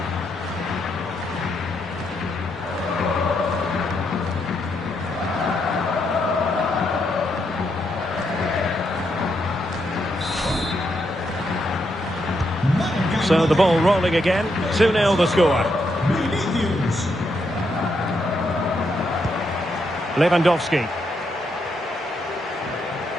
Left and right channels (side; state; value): both; normal; correlation 0.79